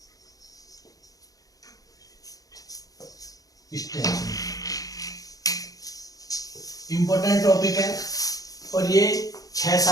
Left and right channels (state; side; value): late; right; 0.17 ms